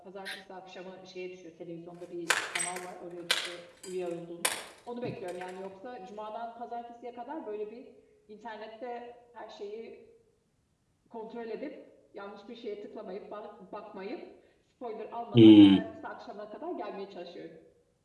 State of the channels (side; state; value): both; identical; correlation 1.00